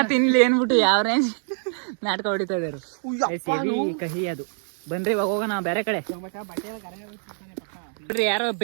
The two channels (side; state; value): left; silent; 62 dB below the other